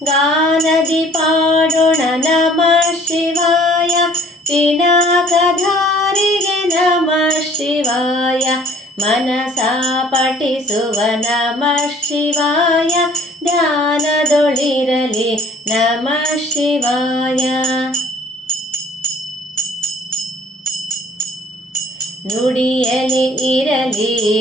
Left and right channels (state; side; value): normal; both; correlation 0.53